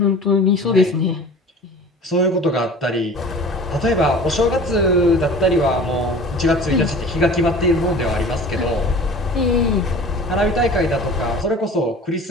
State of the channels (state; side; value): normal; both; correlation 0.41